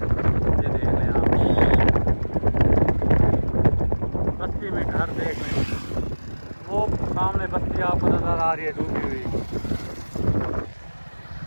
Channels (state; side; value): inverted; both; correlation -1.00